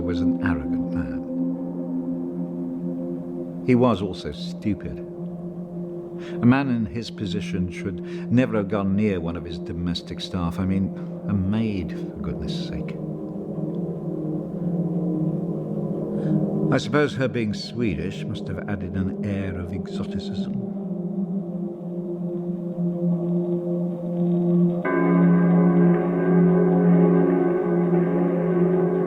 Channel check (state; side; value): identical; both; correlation 1.00